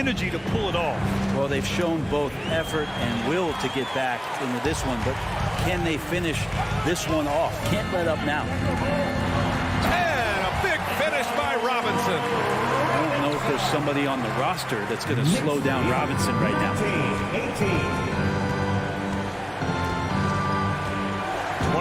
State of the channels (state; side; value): identical; both; correlation 1.00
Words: to pull it off? Well, they've shown both effort and will to get back into this one, but can they finish this one off? Can't let up now. And a big finish by Robinson. I don't know if there's somebody on the roster that's going to slow down Robinson right now.